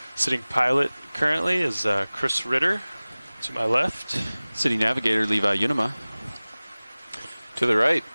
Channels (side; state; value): both; inverted; correlation -0.99